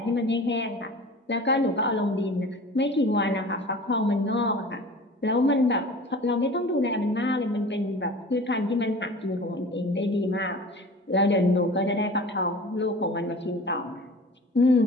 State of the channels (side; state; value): both; normal; correlation 0.41